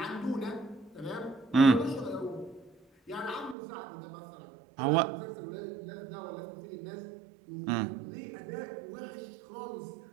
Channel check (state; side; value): drops out; left; at 3.6 s